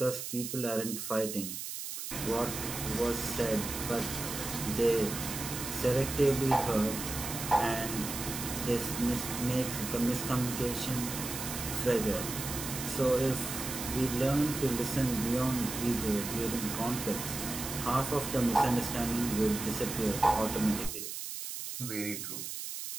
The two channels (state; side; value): noise; right; hiss, 6 dB below the sound